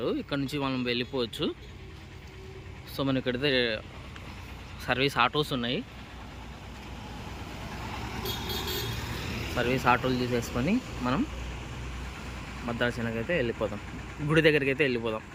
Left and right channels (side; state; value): both; identical; correlation 1.00